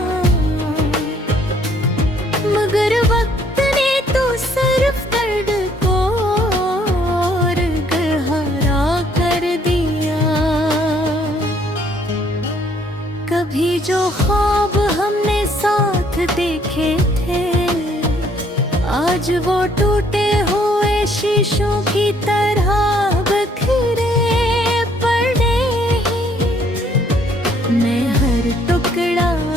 मगर वक्त ने तो सिर्फ दर्द को और गहरा कर दिया। कभी जो ख्वाब हमने साथ देखे थे, आज वो टूटे हुए शीशों की तरह बिखरे पड़े हैं। मैं हर टुकड़ा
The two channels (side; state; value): both; normal; correlation 0.64